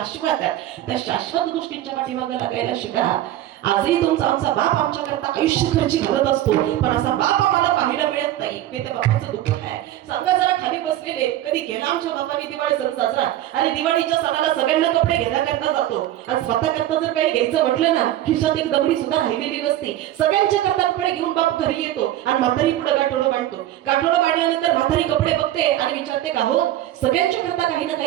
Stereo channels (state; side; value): quieter; left; 13.4 dB